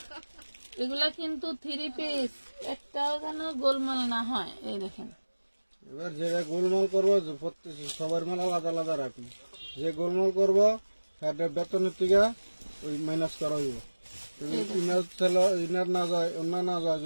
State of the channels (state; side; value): inverted; both; correlation -1.00